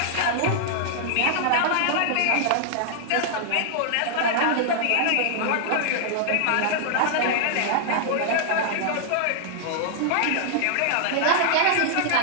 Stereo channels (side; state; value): both; different; correlation -0.01